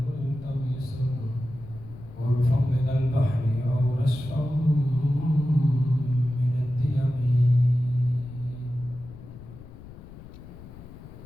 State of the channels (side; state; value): left; noise; rumble, 16 dB below the sound